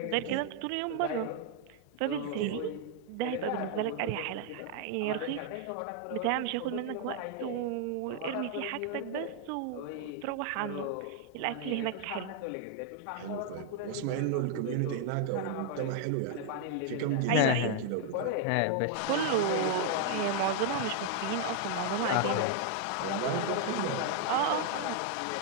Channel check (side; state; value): both; different; correlation 0.00